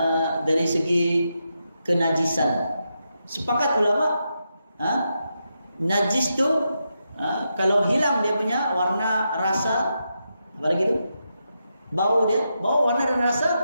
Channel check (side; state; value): both; inverted; correlation -0.85